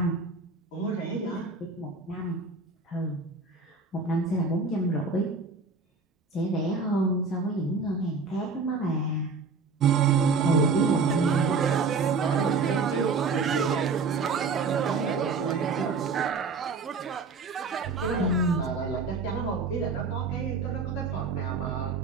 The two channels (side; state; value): left; quieter; 4.4 dB